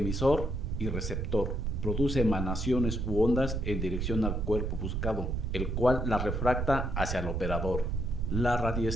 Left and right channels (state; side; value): noise; right; rumble, 1 dB below the sound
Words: y receptor. Produce emanaciones u ondas en dirección al cuerpo buscado, el cual la refracta hacia el operador. La